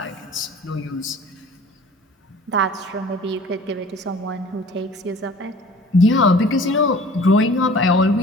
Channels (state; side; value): normal; both; correlation 0.47